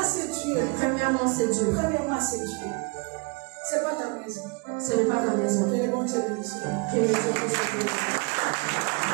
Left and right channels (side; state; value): left; quieter; 30.4 dB